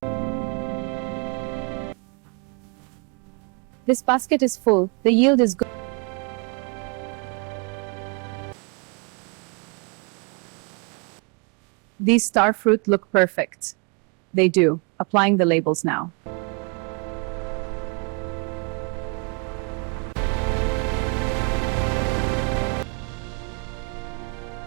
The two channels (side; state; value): left; quieter; 33.6 dB